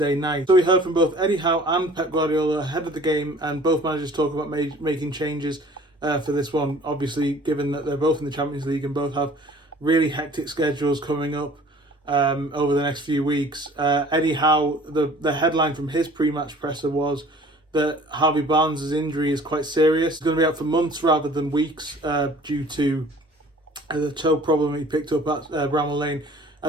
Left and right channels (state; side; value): normal; both; correlation 0.49